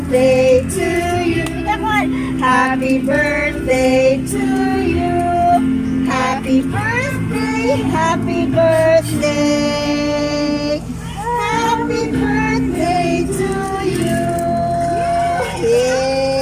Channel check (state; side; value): identical; both; correlation 1.00